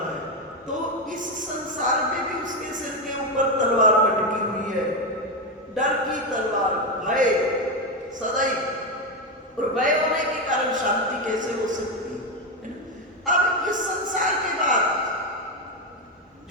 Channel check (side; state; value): both; normal; correlation 0.09